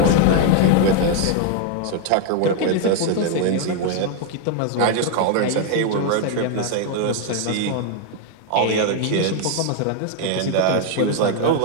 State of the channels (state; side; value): different; both; correlation 0.00